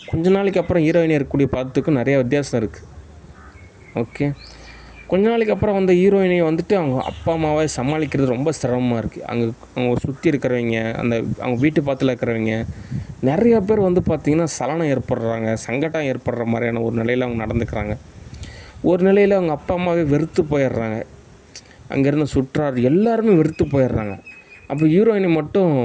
கொஞ்ச நாளைக்கு அப்புறம் ஹீரோயினி இருக்கக்கூடிய பதத்துக்கும் நிறைய வித்தியாசம் இருக்குது. ஓகே. கொஞ்ச நாளைக்கு அப்புறம் வந்த ஹீரோயினி வந்துட்டு அவங்க அப்பா அம்மாவை சமாளிக்கிறது ரொம்ப சிரமமாக இருக்குது. அவங்க சுற்றி இருக்கிறவங்க, அவங்க வீட்டு பக்கத்தில் இருக்கிறவங்க நிறைய பேர் வந்து பார்த்திங்கன்னா சலனம் ஏற்படுறாங்க, சங்கடம் ஏற்படுற மாதிரியான ஒரு நிலையில் அவங்க நடந்துக்கிறாங்க. ஒரு நிலையில் அவங்க அப்பா அம்மாவே வெறுத்து போயிடுறாங்க. அங்கேருந்து சுற்றார் எல்லாருமே வெறுத்து போயிடுறாங்க. அப்போ ஹீரோயினி மட்டும்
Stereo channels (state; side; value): identical; both; correlation 1.00